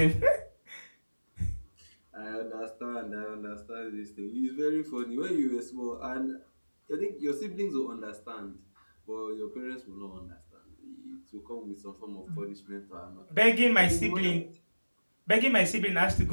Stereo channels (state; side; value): inverted; both; correlation -1.00